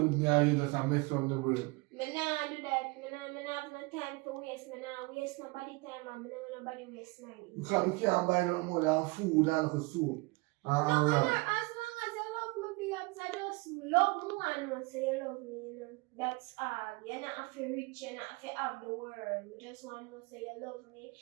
me, and you just mess around the brain. Me nah do that. Me nah have no time for waste. Me nah waste nobody time and me nah want nobody waste mine. Because we can't buy no more than food and soup. No, as long as you love me, babes, I just love me and know say you love me, you know. That's all. You're not have to rich, you're not have to have the world. You just want to know say you love me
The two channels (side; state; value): left; quieter; 26.2 dB